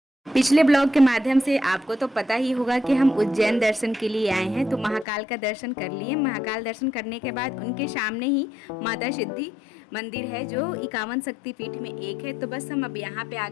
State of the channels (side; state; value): right; drops out; at 5.1 s